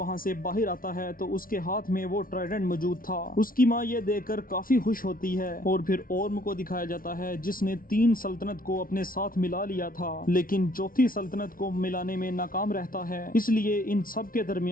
سے باہر آتا ہے تو اس کے ہاتھ میں وہ ٹرائیڈنٹ موجود تھا۔ اس کی ماں یہ دیکھ کر کافی خوش ہوتی ہے، اور پھر اورم کو دکھایا جاتا ہے جس نے 3 سلطنت کو اپنے ساتھ ملا لیا تھا، لیکن چوتھی سلطنت کو ملانے میں ناکام رہتا ہے، اس لیے ان سب کے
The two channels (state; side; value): late; right; 0.42 ms